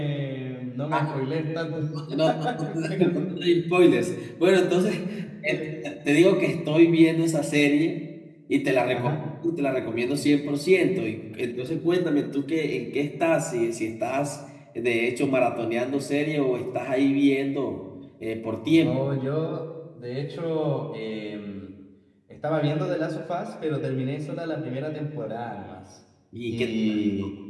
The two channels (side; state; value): both; identical; correlation 1.00